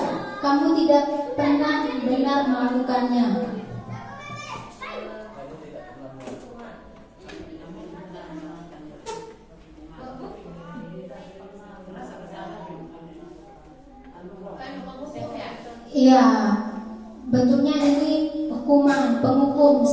kamu tidak pernah benar melakukannya. Iya, bentuknya ini hukuman, penghukum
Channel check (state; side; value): identical; both; correlation 1.00